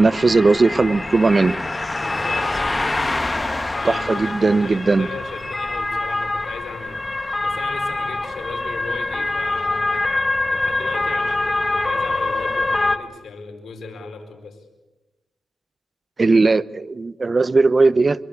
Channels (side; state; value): both; normal; correlation 0.95